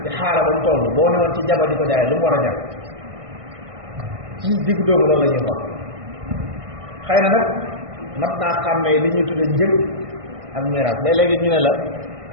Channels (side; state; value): left; late; 1.6 ms